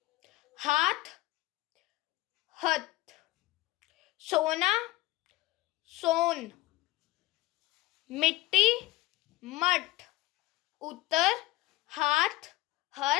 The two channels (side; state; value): right; quieter; 18.7 dB